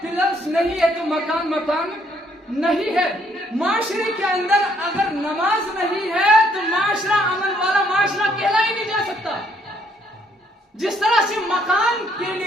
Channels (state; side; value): normal; both; correlation 0.68